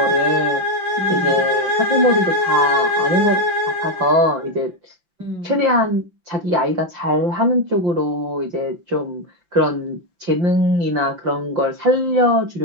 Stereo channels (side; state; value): left; late; 5.8 ms